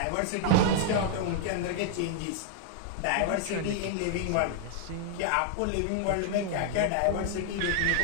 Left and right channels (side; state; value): both; different; correlation 0.00